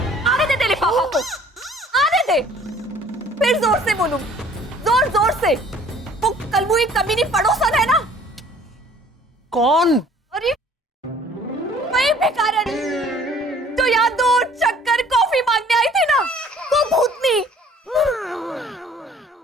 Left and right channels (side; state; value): both; normal; correlation 0.54